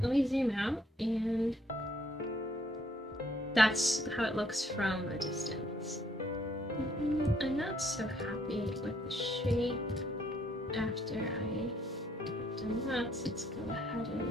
let me zoom out, and that's how it looks from a distance. I'm not so happy with the shape after I've done that, so let's go ahead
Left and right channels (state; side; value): normal; both; correlation 0.68